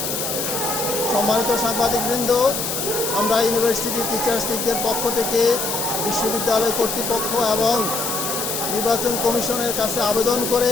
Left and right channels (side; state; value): left; noise; hiss, 3 dB below the sound